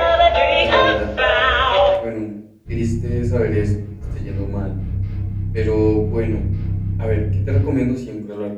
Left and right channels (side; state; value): both; identical; correlation 1.00